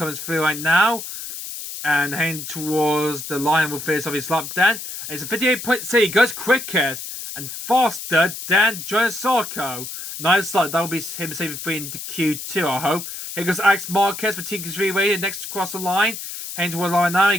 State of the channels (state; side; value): noise; left; hiss, 9 dB below the sound